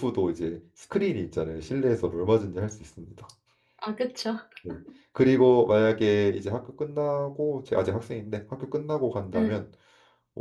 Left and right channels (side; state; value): both; identical; correlation 1.00